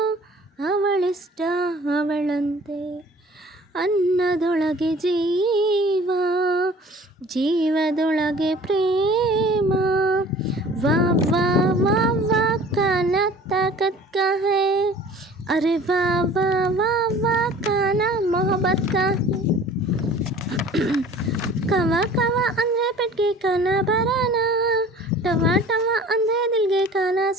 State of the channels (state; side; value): normal; both; correlation 0.47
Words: ಅವಳಿಷ್ಟ ಅವಳಂತೆ. ಅನ್ನದೊಳಗೆ ಜೀವ, ಜೀವದೊಳಗೆ ಪ್ರೇಮ. ವಾ ವಾ ವಾ ವಾ ಕಾನಾ ತಾಕತ್ ಕಾ ಹೈ, ಅರೆ ವಾ ವಾ ವಾ ವಾ ಕಾನಾ ಮೊಹಬ್ಬತ್ ಕಾ ಹೈ. ಕವ ಕವ ಅಂದರೆ ಪೆಟ್ಗೆ ಕಾನ ಬರಾನ, ಟವ ಟವ ಅಂದರೆ ದಿಲ್ಗೆ ಕಾನ